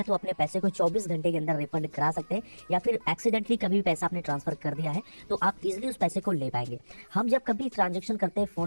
तो अपने पैसे को 24 घंटे के अंदर रिफंड करा सकते हैं, या फिर एक्सीडेंटली कभी भी पैसा आपने ट्रांसफर कर दिया है तो आप इजीली उस पैसे को ले पाएंगे। हम जब कभी ट्रांजेक्शन करते हैं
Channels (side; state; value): both; inverted; correlation -1.00